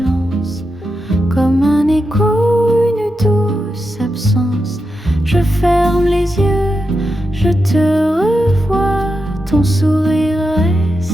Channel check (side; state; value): both; normal; correlation 0.88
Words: comme un écho, une douce absence. Je ferme les yeux, je te revois. Ton sourire